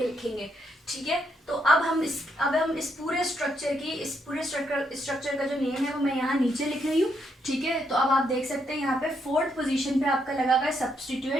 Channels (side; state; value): both; normal; correlation 0.77